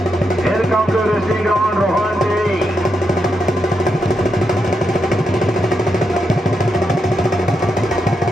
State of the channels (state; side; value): normal; both; correlation 0.83